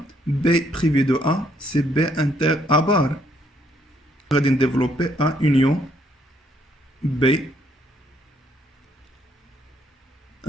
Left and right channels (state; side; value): normal; both; correlation 0.70